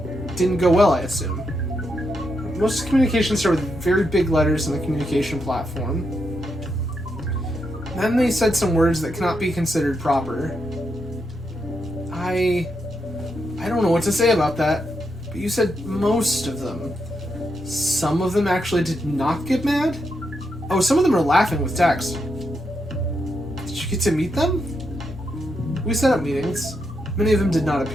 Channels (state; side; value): normal; both; correlation 0.82